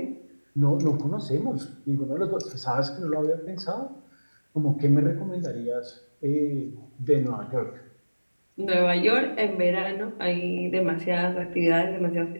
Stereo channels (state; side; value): inverted; both; correlation -1.00